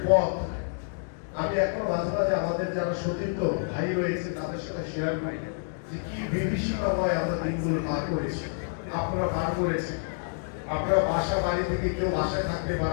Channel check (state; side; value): silent; right; digital silence